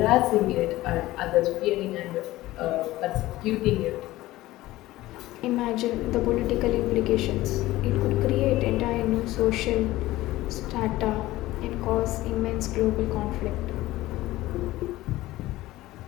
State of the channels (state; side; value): quieter; right; 17.1 dB